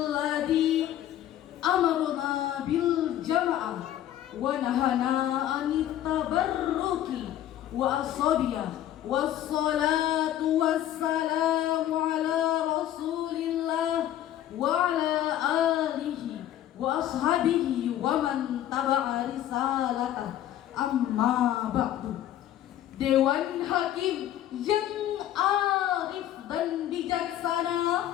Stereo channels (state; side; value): quieter; right; 12.1 dB